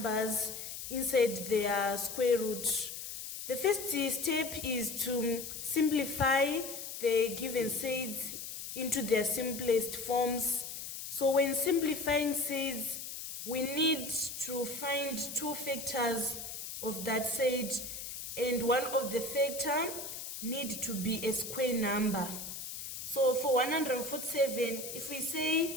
inside their square root. The first step is to simplify the given surds into their simplest forms. So when simplifying surds, we need to find two factors of that surd, and one of the factor need to be a square number. So for 147, if we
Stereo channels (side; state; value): left; noise; hiss, 8 dB below the sound